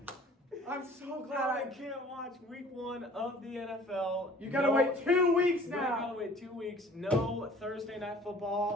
I'm so glad I can't watch week 1 of the NFL. You gotta No- wait 2 weeks We now. gotta wait 2 weeks. No Thursday night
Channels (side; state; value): both; normal; correlation 0.50